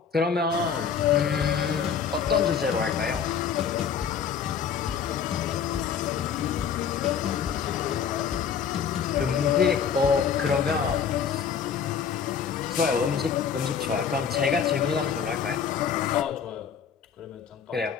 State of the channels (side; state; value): right; quieter; 7.1 dB